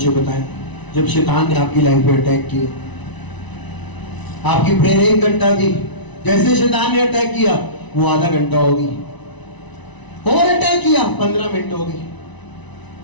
बताएं? जब शैतान ने आपकी लाइफ में अटैक किया, आपकी प्रेयर 1 घंटा थी, जैसे शैतान ने अटैक किया वो आधा घंटा होगी, और अटैक किया 15 मिनट होगी,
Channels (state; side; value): late; right; 1.0 ms